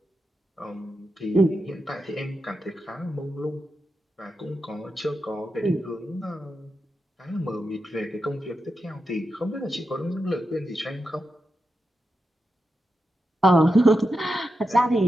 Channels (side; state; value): both; normal; correlation 0.88